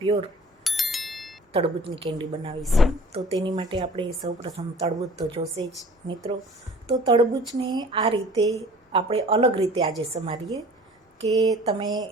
તરબૂચની કેન્ડી બનાવીશું. તો તેની માટે આપણે સૌપ્રથમ તરબૂચ તો જોશે જ મિત્રો. તો તરબૂચને આ રીતે આપણે અલગ રીતે આજે સમારીએ કે તમે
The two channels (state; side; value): normal; both; correlation 0.47